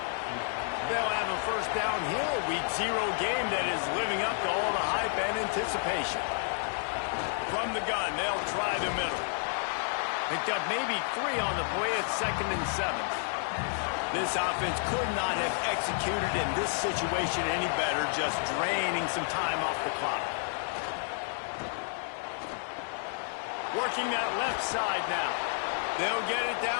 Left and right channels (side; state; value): right; silent; 57 dB below the other